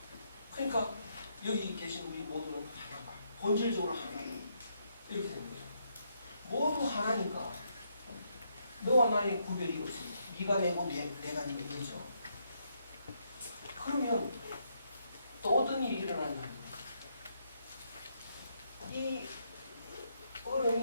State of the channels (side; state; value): both; inverted; correlation -0.76